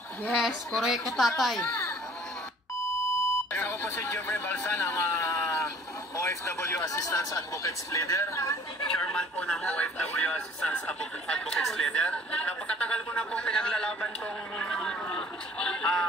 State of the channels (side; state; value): both; normal; correlation 0.52